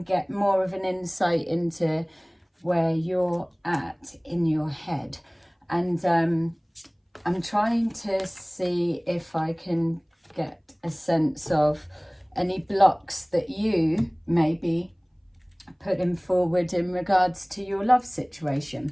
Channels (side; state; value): both; identical; correlation 1.00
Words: get more of an insight into where you're at in your head. And I'm trying to see if I can get a sense of any blocks that you may be putting forward in regards to your love